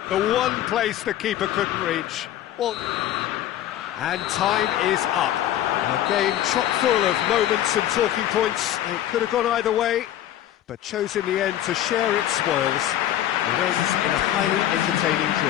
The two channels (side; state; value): right; quieter; 12.4 dB